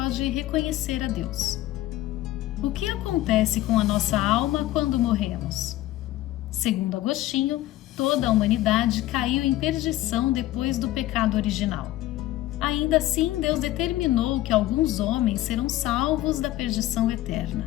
reconhecer a Deus. O que acontece com a nossa alma quando morremos? Segundo Agostinho, toda a humanidade caiu em perdição depois do pecado original. Ainda assim, Deus determinou que alguns homens serão salvos da perdição eterna.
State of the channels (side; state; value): right; quieter; 15.4 dB